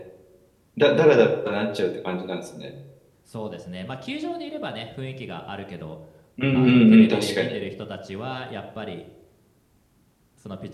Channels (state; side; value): identical; both; correlation 1.00